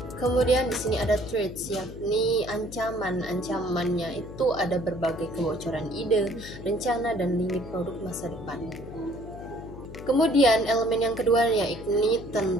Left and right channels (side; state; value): left; noise; hum, 13 dB below the sound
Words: Kemudian di sini ada threats, yakni ancaman. Ancamannya itu ada berbagai kebocoran ide, rencana, dan limit produk masa depan. Kemudian elemen yang kedua yakni